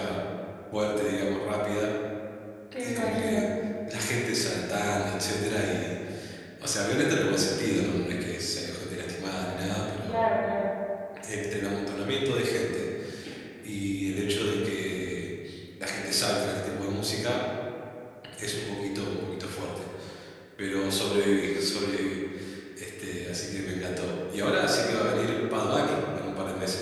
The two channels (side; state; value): both; identical; correlation 1.00